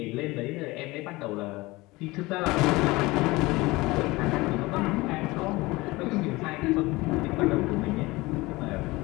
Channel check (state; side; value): quieter; right; 21.4 dB